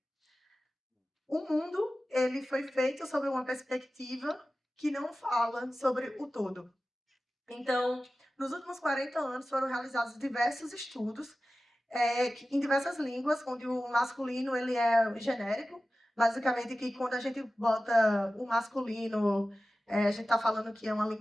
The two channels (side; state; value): both; normal; correlation 0.95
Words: o mundo ele foi feito sobre uma perspectiva que não fala sobre o todo. Então, nos últimos 40 anos foram realizados diversos estudos em diversas línguas, onde o masculino ele é genérico, basicamente que quando a gente bota o masculino, a gente está falando que é uma